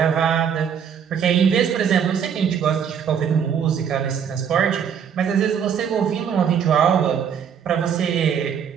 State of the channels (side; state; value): left; quieter; 7.7 dB